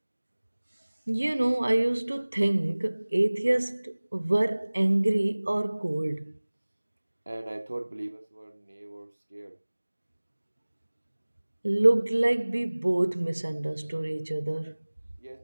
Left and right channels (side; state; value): both; inverted; correlation -1.00